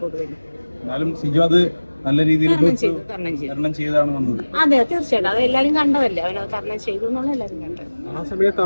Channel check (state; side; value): inverted; both; correlation -1.00